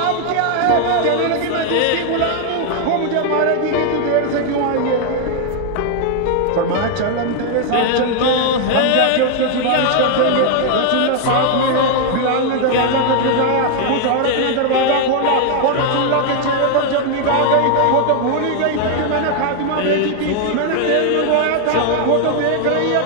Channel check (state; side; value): different; both; correlation 0.00